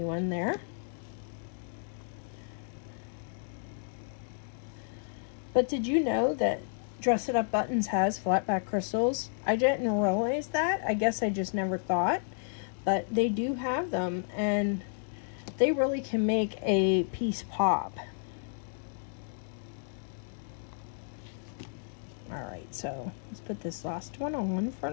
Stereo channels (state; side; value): silent; right; digital silence